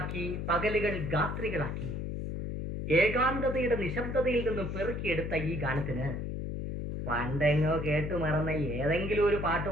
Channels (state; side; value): noise; left; hum, 4 dB below the sound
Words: പകലുകൾ ഗാത്രികളാക്കി, ഏകാന്തതയുടെ നിശബ്ദതയിൽ നിന്നും പെറുക്കിയെടുത്ത ഈ ഗാനത്തിന് പണ്ടെങ്ങോ കേട്ടു മറന്ന ഏതെങ്കിലും ഒരു